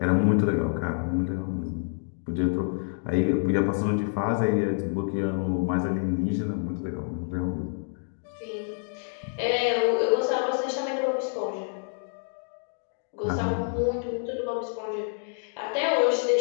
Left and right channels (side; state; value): right; silent; 60 dB below the other